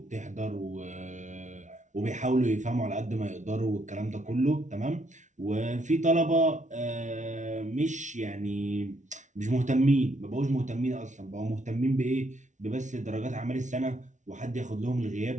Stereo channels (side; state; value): left; late; 0.36 ms